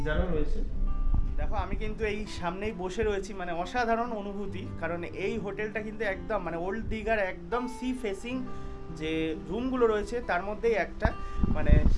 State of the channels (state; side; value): identical; both; correlation 1.00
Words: রয়েছে। দেখো, আমি কিন্তু এই সামনেই বসে রয়েছি, মানে অসাধারণ অনুভূতি, কারণ এই হোটেলটা কিন্তু একদম মানে ওল্ড দীঘার একদম সি ফেসিং যে রুমগুলো রয়েছে তার মধ্যেই একটা, মানে